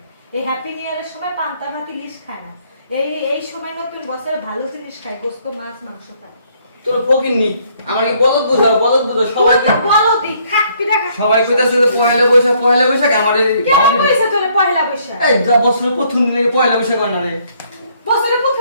এই হ্যাপি নিউ ইয়ারের সময় পান্তা ভাত ইলিশ খায় না। এই সময় নতুন বছরে ভালো জিনিস খায়, গোশত মাছ মাংস খায়। তোর ফকির নি আমার কি বলদ বুঝাও সবাই তুই তো বলো দি খাক পিঠা খা। সবাই কইতাছে যে পয়লা বৈশাখ আমারে কেন কইছে তোরে পয়লা বৈশাখ? এই যা বছরের প্রথম দিনে পয়লা বৈশাখ হয় না রে বছরের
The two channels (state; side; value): inverted; both; correlation -0.66